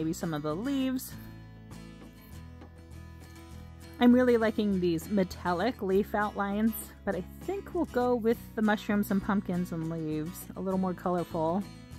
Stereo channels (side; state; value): both; identical; correlation 1.00